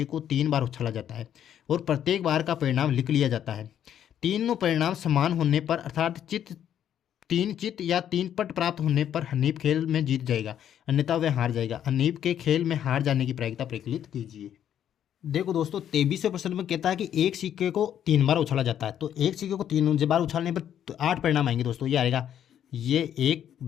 को 3 बार उछाला जाता है और प्रत्येक बार का परिणाम लिख लिया जाता है। तीनों परिणाम समान होने पर, अर्थात 3 चित या 3 पट प्राप्त होने पर हनीफ खेल में जीत जाएगा, अन्यथा वह हार जाएगा। हनीफ के खेल में हार जाने की प्रायिकता प्रकलित कीजिए। देखो दोस्तों 23वें प्रश्न में कहता है कि एक सिक्के को 3 बार उछाला जाता है, तो एक सिक्के को 3 बार उछालने पर 8 परिणाम आएंगे दोस्तों। ये आएगा, ये 1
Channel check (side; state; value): right; quieter; 10.0 dB